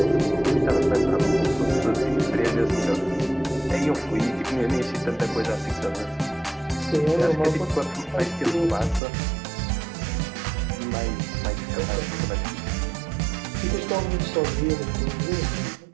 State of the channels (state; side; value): drops out; left; at 9.0 s